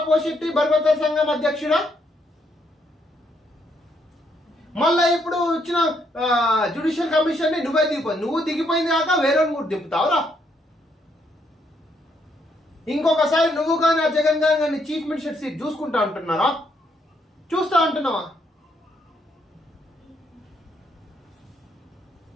పోషెట్టి బర్బతల సంఘం అధ్యక్షుడా, మళ్ళా ఇప్పుడు వచ్చిన జ్యుడిషియల్ కమిషన్ ని నువ్వే నువ్వు దిగిపోయింది కాక వేరే కూడా దింపుతావురా. ఇంకొకసారి నువ్వు కానీ ఆ జగన్ గారిని చీఫ్ మినిస్టర్ సీట్ చూసుకుంటా అంటున్నారా? చూస్తా అంటున్నావా?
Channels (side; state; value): both; normal; correlation 0.73